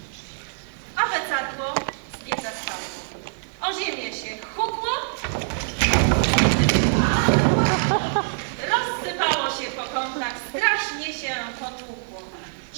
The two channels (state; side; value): silent; left; digital silence